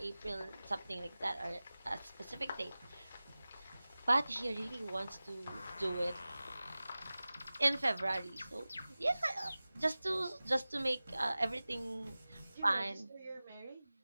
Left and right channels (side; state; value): both; inverted; correlation -0.98